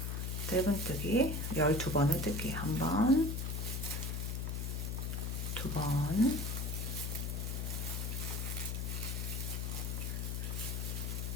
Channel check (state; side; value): noise; left; hum, 1 dB below the sound